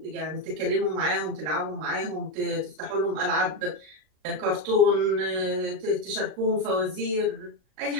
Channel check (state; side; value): late; left; 39 ms